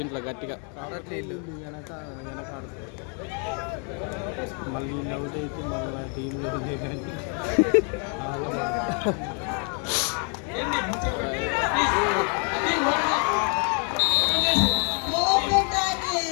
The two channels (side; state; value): right; quieter; 39.2 dB